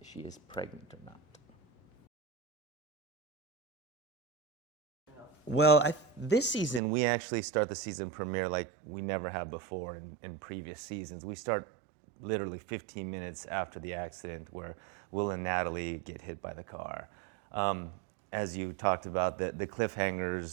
she is pregnant or not. Well, this season we actually start the season premiere like we never have before in previous seasons. We start literally 15 minutes after the accident where Will and Natalie get hit by the car. As you talked about, the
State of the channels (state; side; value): drops out; left; at 6.8 s